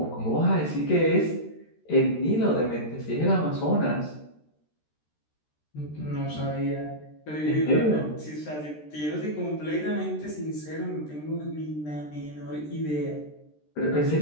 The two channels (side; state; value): right; late; 13 ms